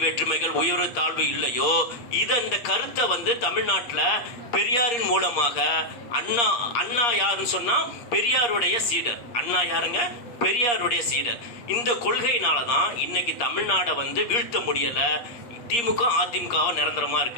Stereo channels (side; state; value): right; late; 8.4 ms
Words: வேற்றுமைகள் உயர்வு தாழ்வு இல்லையோ, இந்த கருத்தை தமிழ்நாட்டுல பெரியாரின் மூலமாக அண்ணா யாருன்னு சொன்னா பெரியாருடைய சீடர். அண்ணா யாருங்க? பெரியாருடைய சீடர். இந்த கொள்கையினாலதான் இன்னைக்கு தமிழ்நாட வீழ்த்த முடியல. திமுக அதிமுக நிரந்தரமா